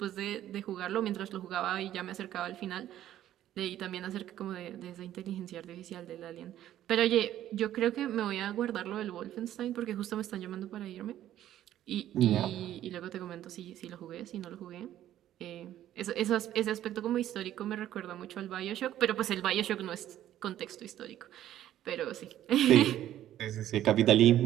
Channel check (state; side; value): quieter; left; 12.4 dB